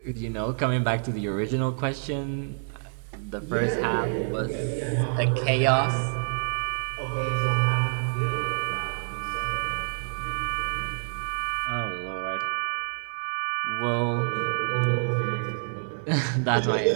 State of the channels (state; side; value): silent; left; digital silence